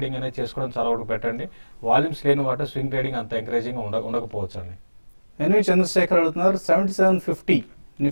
అనేది చేసుకోవడం చాలా వరకు పెట్టండి. వాల్యూమ్స్ లేని వాటిలో స్వింగ్ ట్రేడింగ్ అంత ఎంకరేజింగ్ ఉండకపోవచ్చు అండి. ఎన్వి చంద్రశేఖర్ అడుగుతున్నారు, 7750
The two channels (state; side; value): inverted; both; correlation -1.00